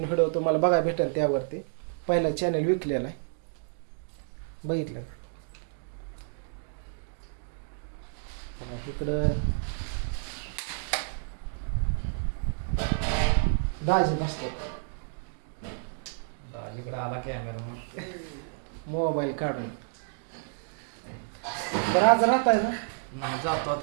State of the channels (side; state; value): left; silent; digital silence